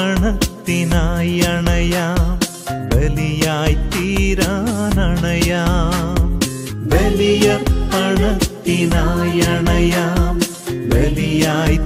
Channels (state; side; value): identical; both; correlation 1.00